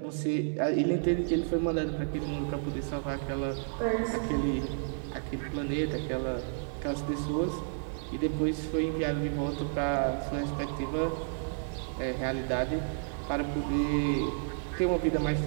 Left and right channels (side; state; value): left; silent; 57 dB below the other